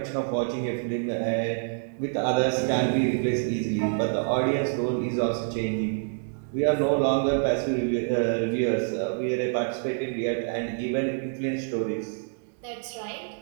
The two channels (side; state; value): left; silent; 60 dB below the other